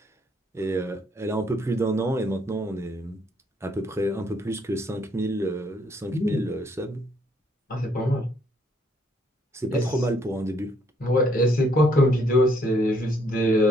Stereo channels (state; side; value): normal; both; correlation 0.69